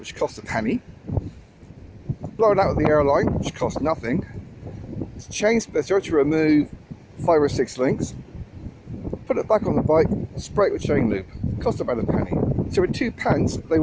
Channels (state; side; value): identical; both; correlation 1.00